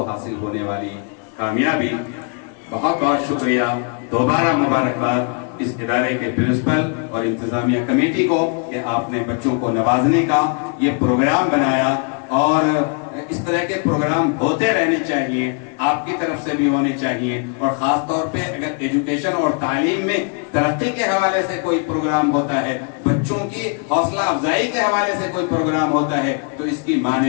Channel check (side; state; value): right; quieter; 38.0 dB